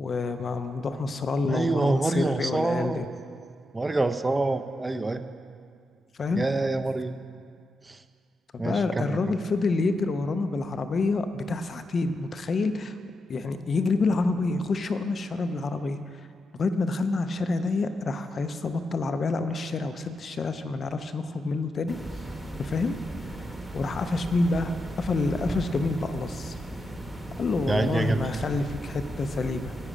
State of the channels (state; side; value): normal; both; correlation 0.86